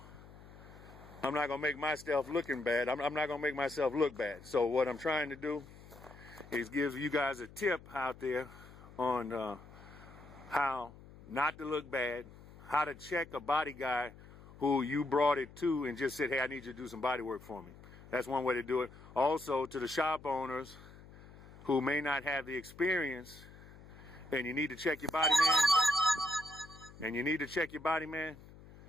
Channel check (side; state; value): left; noise; hum, 19 dB below the sound